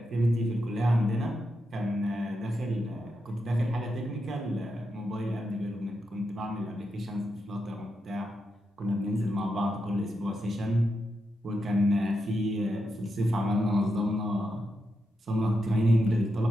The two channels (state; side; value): normal; both; correlation 0.85